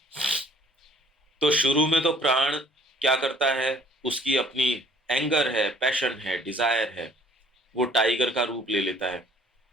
तो शुरू में तो प्राण क्या करता है, उसकी अपनी एंगर है, पैशन है, डिजायर है, वो टाइगर का रूप ले लेता है।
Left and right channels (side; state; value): both; normal; correlation 0.57